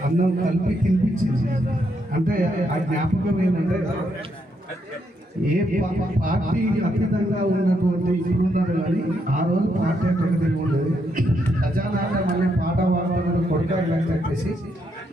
అన్నం కలిపి తినిపించింది. అంటే ఆ జ్ఞాపకం ఏంటంటే ఏ పార్టీ అతీతంగా ఉన్నటువంటి ఇప్పుడున్నారు కానీ ఆ రోజు పార్టీ అంటే ఒకటి ఉండదు. ఖజానా మళ్ళీ పాట పాడడం కొడకాలని చెప్పేసి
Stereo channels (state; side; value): normal; both; correlation 0.77